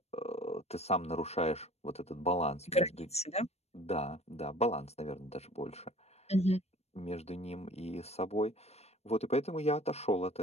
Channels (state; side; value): late; right; 0.31 ms